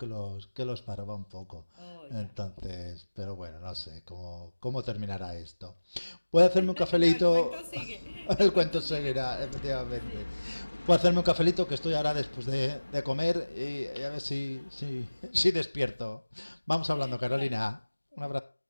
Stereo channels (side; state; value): both; inverted; correlation -1.00